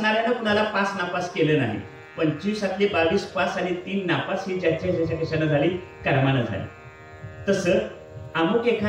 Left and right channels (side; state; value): both; identical; correlation 1.00